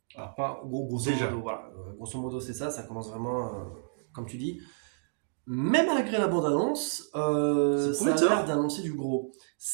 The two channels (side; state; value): left; silent; digital silence